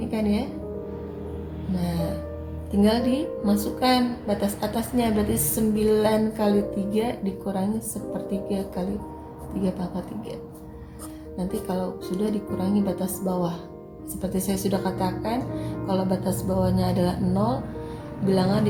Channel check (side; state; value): both; identical; correlation 1.00